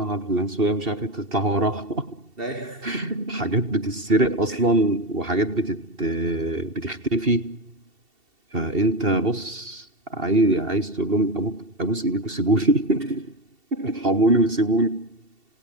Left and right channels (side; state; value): left; late; 2.7 ms